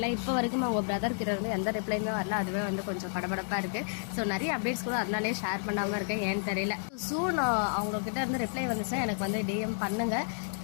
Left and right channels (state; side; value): silent; right; digital silence